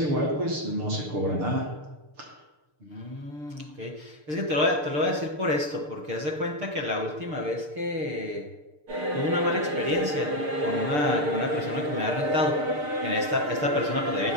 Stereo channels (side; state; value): left; late; 6.7 ms